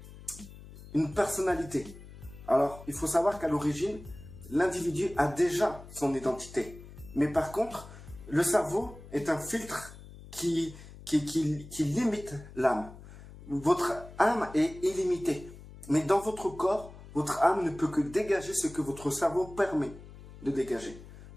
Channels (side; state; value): left; noise; hum, 17 dB below the sound